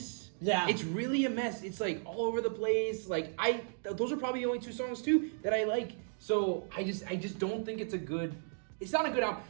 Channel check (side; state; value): left; silent; digital silence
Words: Yeah. It's really a mess. It's like all over the place. Like those are probably the only 2 songs too that I like. So I just don't think it's not a good album.